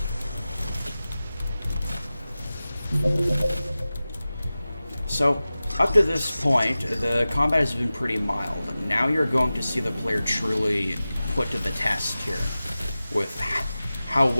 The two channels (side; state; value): both; inverted; correlation -0.96